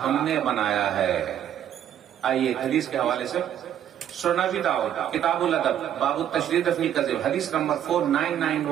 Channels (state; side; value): quieter; left; 10.4 dB